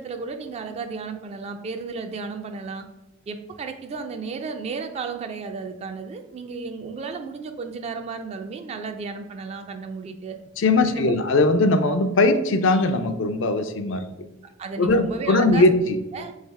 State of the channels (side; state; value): both; normal; correlation 0.13